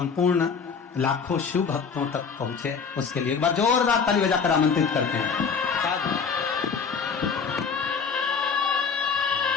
लाखों शिव भक्तों तक पहुंचे, उसके लिए एक बार जोरदार ताली बजाकर आमंत्रित करते हैं।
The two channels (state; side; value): quieter; right; 5.7 dB